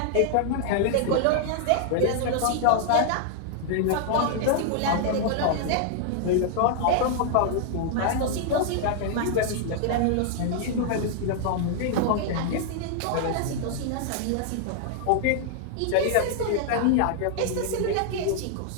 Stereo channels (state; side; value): different; both; correlation -0.01